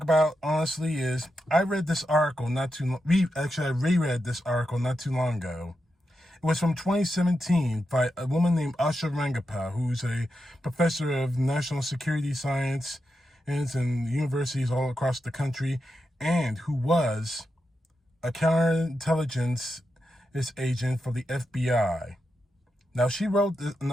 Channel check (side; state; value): both; normal; correlation 0.87